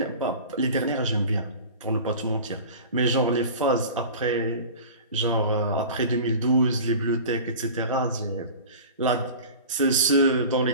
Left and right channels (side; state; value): both; inverted; correlation -0.37